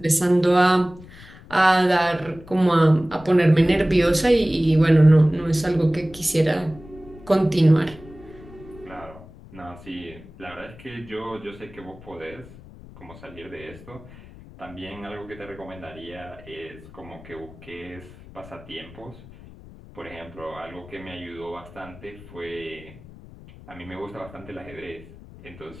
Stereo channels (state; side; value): noise; left; rumble, 19 dB below the sound